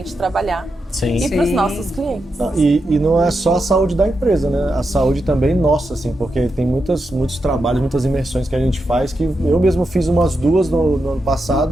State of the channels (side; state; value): both; normal; correlation 0.86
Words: trabalhar. Sim. E para os nossos clientes. E não é só a saúde da empresa, né? A saúde também nossa, assim, porque tem muitos trabalhos, muitas imersões que a gente faz, que eu mesmo fiz umas 2 no ano